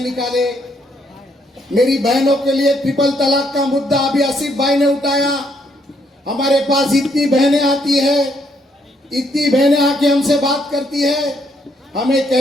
मेरी बहनों के लिए ट्रिपल तलाक का मुद्दा अभी आसिफ भाई ने उठाया। हमारे पास इतनी बहनें आती है, इतनी बहनें आके हमसे बात करती है, हमें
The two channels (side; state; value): both; normal; correlation 0.72